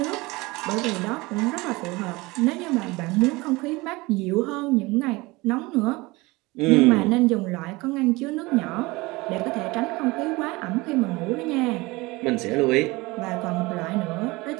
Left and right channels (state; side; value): quieter; left; 22.7 dB